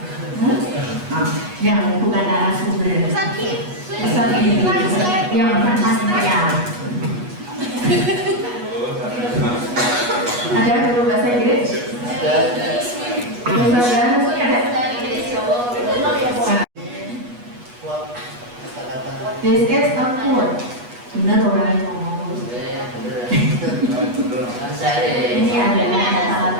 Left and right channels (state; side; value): late; left; 8.2 ms